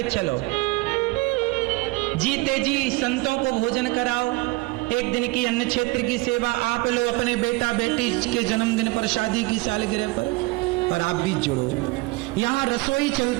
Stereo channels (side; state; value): left; quieter; 22.7 dB